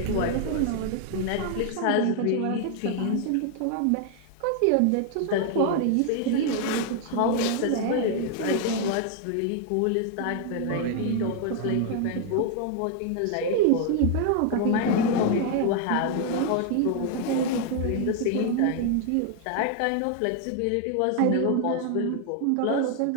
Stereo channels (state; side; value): different; both; correlation 0.00